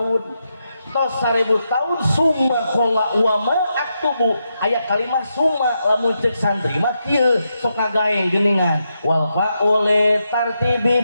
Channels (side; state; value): both; inverted; correlation -0.84